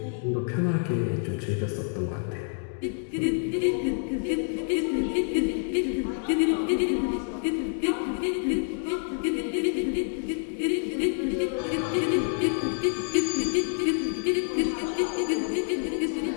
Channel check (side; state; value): right; silent; 60 dB below the other